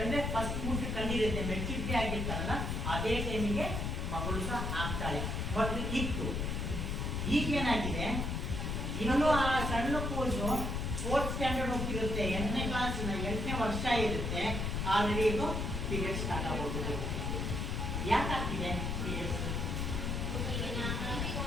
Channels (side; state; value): left; noise; rumble, 1 dB below the sound